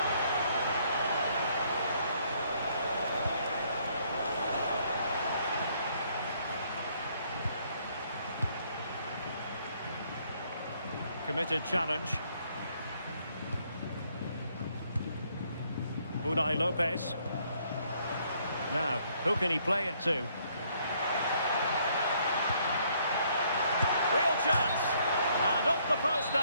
Committed challenge. Unai Lopez. Now, who can he play it to? Real chance! And off the post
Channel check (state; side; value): inverted; both; correlation -0.67